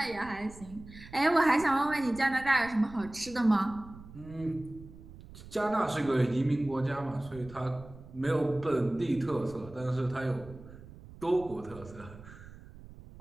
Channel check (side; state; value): right; noise; rumble, 18 dB below the sound